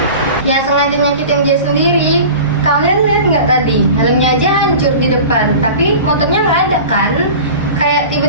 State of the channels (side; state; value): both; inverted; correlation -0.37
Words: Ya sengaja nyakitin dia sendiri. Kalian lihat nggak tadi? Helmnya aja hancur di depan, tapi motornya nggak ada kan? Kayak